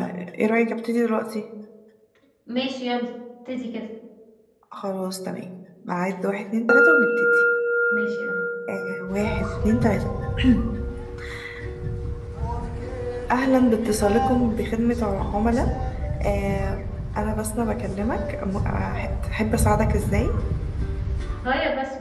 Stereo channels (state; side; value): identical; both; correlation 1.00